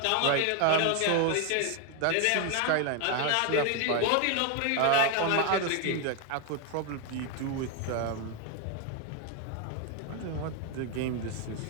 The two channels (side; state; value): both; different; correlation 0.01